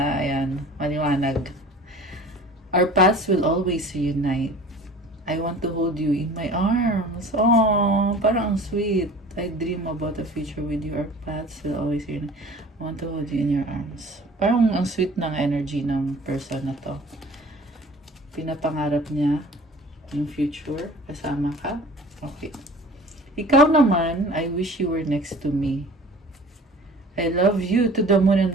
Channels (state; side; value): normal; both; correlation 0.45